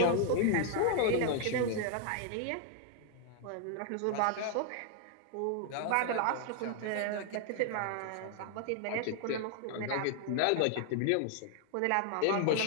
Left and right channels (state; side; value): different; both; correlation 0.00